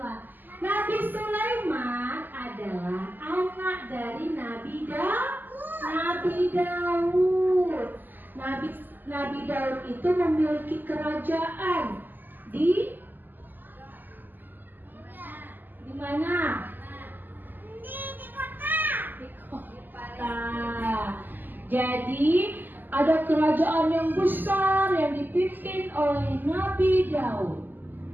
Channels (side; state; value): left; late; 0.088 ms